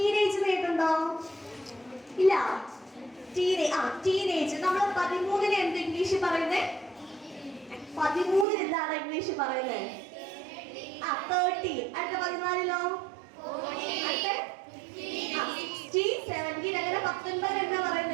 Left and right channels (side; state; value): left; drops out; at 8.5 s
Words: കേട്ടുണ്ടോ? ഇല്ല. ടീനേജ്. നമ്മൾ 13-ന് എന്ത് ഇംഗ്ലീഷ് പറയുന്നേ? 13-ന് എന്താണ് ഇംഗ്ലീഷ് പറയുന്നത്? 13. അടുത്ത 14-ലോ? അടുത്ത 16, 17. അങ്ങനെ 19 എന്താ